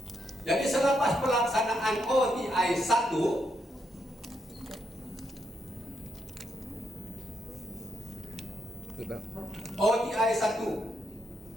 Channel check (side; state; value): both; normal; correlation 0.79